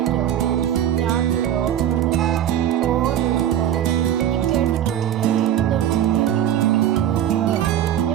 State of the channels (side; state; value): left; quieter; 10.7 dB